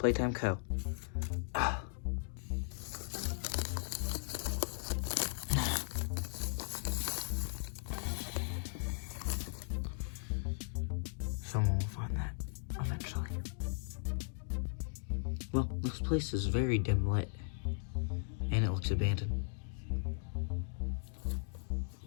Co. Someone will find that eventually. Well, this place is very dim lit, and it looks abandoned.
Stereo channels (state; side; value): silent; right; digital silence